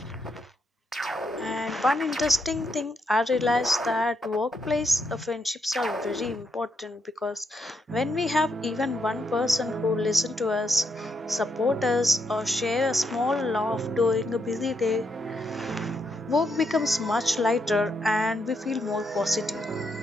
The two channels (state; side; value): normal; both; correlation 0.79